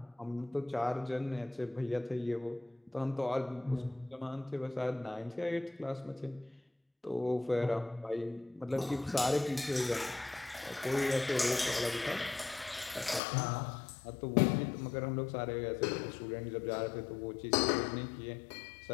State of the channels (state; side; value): drops out; right; at 13.2 s